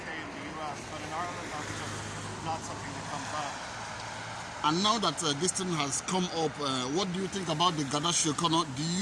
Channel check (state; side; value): identical; both; correlation 1.00